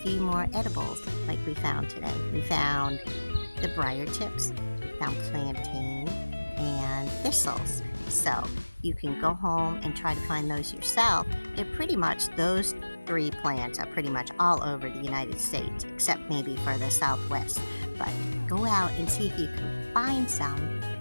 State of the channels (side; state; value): both; inverted; correlation -1.00